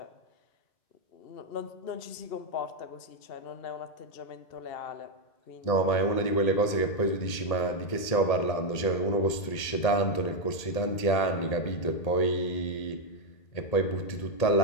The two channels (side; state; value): right; late; 1.8 ms